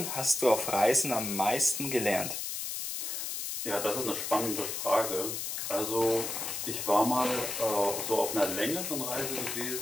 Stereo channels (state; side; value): noise; left; hiss, 4 dB below the sound